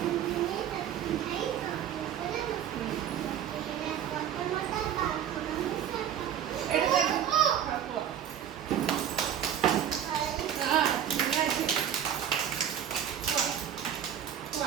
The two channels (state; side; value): quieter; left; 9.6 dB